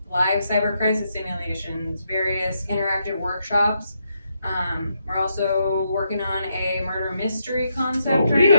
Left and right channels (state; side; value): inverted; both; correlation -0.79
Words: cyber crisis simulations, various interactive workshops. We're also working on a murder mystery concept right